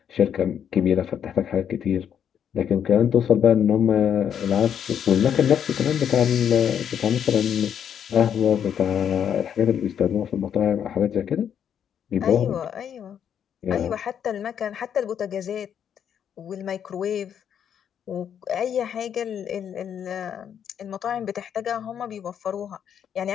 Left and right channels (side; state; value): right; quieter; 8.7 dB